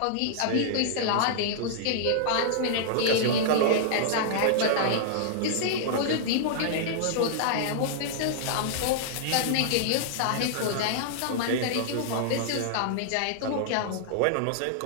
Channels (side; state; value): both; different; correlation -0.01